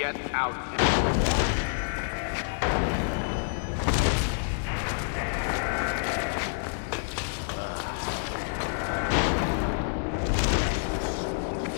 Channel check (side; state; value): right; silent; digital silence